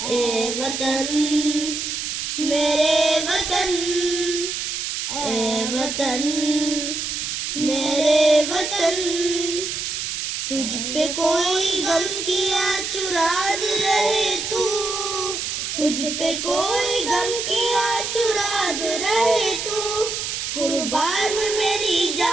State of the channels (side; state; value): right; noise; hiss, 3 dB below the sound